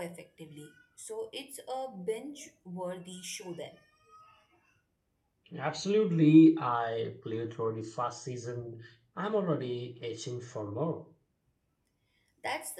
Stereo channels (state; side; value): identical; both; correlation 1.00